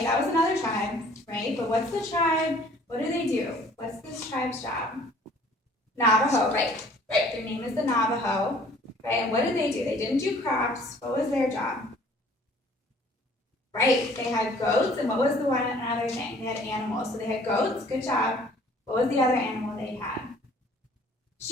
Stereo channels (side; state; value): both; normal; correlation 0.54